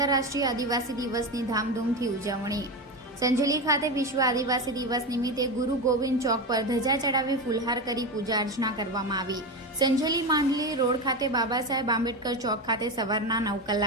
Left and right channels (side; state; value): both; normal; correlation 0.18